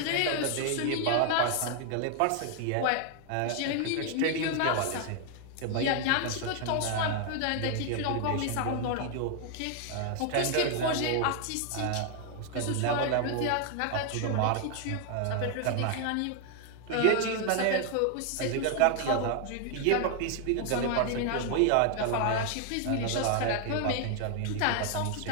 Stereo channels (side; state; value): both; different; correlation 0.00